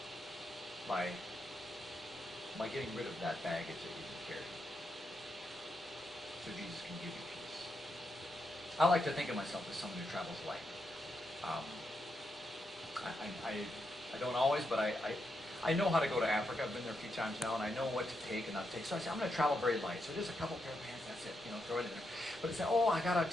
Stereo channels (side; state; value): both; normal; correlation 0.83